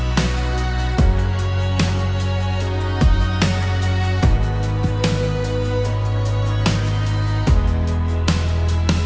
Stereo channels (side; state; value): both; identical; correlation 1.00